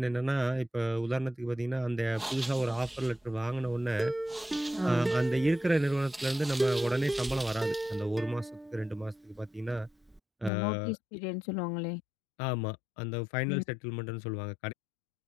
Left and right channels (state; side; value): drops out; right; at 10.5 s